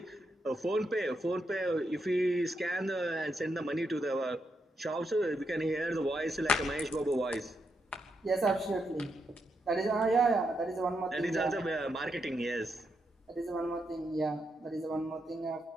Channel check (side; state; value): both; normal; correlation 0.82